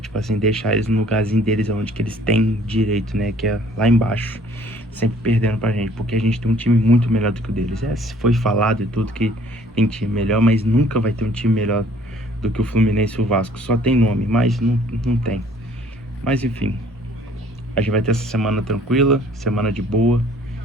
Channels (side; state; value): both; normal; correlation 0.57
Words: assim, deixar eles no lugarzinho deles, onde que eles têm direito, né? Que é lá embaixo, sempre perdendo pra gente. Porque a gente tem um time muito melhor do que o deles. Foi falado e tudo que tem time melhor, mas nunca vai ter um time melhor do que o Fluminense e o Vasco. Só tem nome, mas não tem. Mas, enfim, a gente vai ter essa semana tranquila, semana de boa.